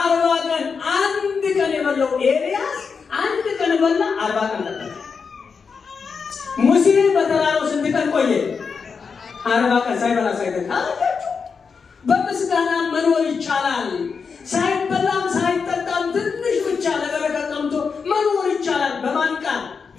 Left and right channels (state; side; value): quieter; right; 5.5 dB